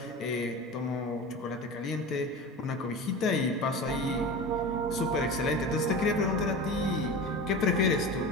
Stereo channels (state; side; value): normal; both; correlation 0.31